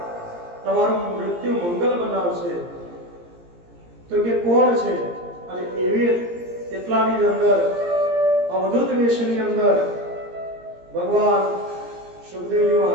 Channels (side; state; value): left; late; 17 ms